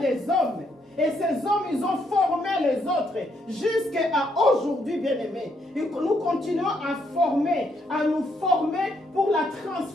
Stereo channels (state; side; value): normal; both; correlation 0.74